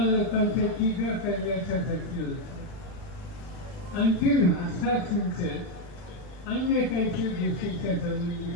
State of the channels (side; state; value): right; late; 40 ms